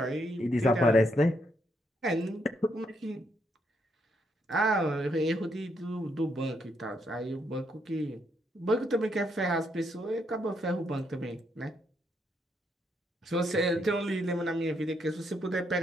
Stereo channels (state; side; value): normal; both; correlation 0.76